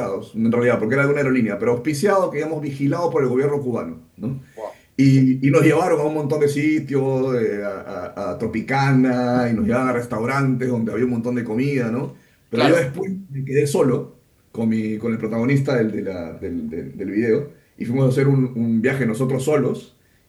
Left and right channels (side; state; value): both; identical; correlation 1.00